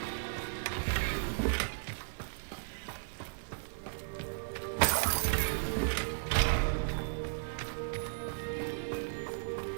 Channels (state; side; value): silent; left; 54 dB below the other